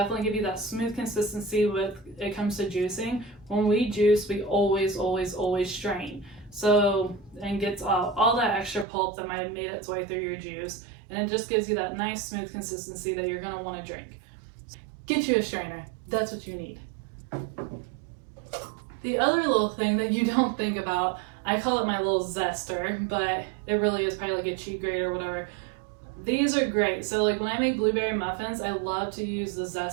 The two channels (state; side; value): drops out; left; at 8.8 s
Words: give you that smooth consistency when it comes to juicing. When we juice, we always strain. So, and gets all that extra pulp that might have made its way through your juice, and it just gives you that nice smooth consistency that you're going to want to drink. Get you a strainer. That's what you need. The other little thing that you don't think about, I call it my little zester, but it really is probably like a cheat grate or whatever. These are great. So like when I make blueberry muffins, I love to use the